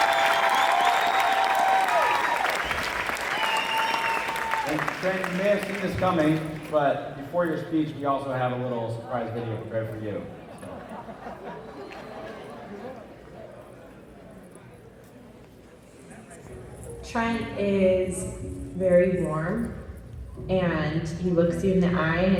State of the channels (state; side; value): identical; both; correlation 1.00